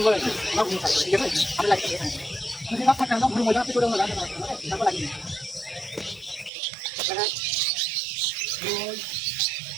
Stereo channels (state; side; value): drops out; left; at 6.5 s